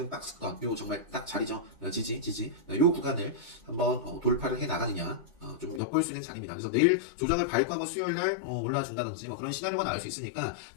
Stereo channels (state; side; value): drops out; right; at 5.8 s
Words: 박스권 요 정말 딱 자리죠. 지지 요 구간을 한번 돌파를 해 나가느냐 좀 엿볼 수 있는 자리입니다. 그래서 내일 조정을 밟고 한번 수요일 날 올라와 준다든지 뭐 그런 시나리오가 나올 수 있으니까